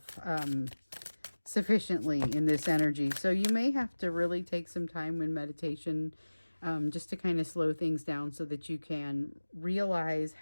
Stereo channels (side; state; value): both; inverted; correlation -1.00